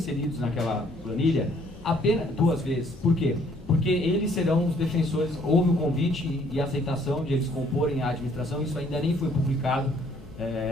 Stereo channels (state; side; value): noise; left; hum, 21 dB below the sound